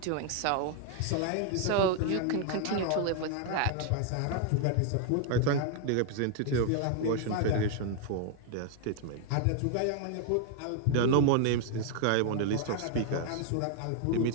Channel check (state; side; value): different; both; correlation 0.00